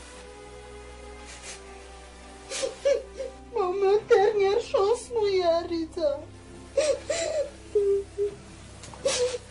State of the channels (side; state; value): both; identical; correlation 1.00